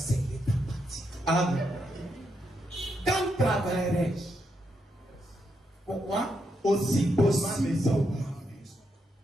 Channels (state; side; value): normal; both; correlation 0.81